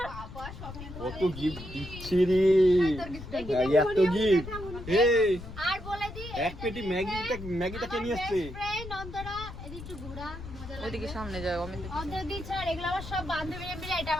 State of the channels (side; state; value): left; noise; rumble, 11 dB below the sound